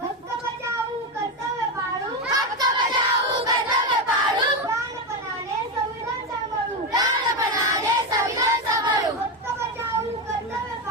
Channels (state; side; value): normal; both; correlation 0.13